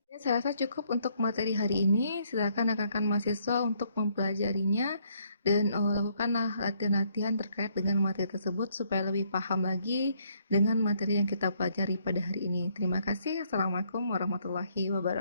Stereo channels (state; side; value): inverted; both; correlation -0.69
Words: Saya rasa cukup untuk materi hari ini. Silakan rekan-rekan mahasiswa untuk mempelajarinya dan lakukanlah latihan-latihan terkait dengan materi tersebut supaya lebih paham lagi dengan materi yang kita pelajari pada hari ini. Terima kasih. Assalamualaikum warahmatullahi